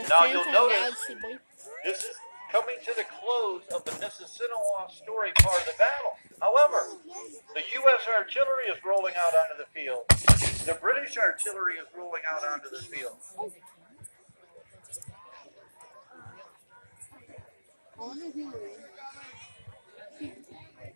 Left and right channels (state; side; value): inverted; both; correlation -1.00